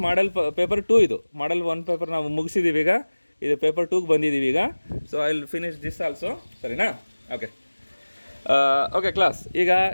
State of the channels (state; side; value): inverted; both; correlation -1.00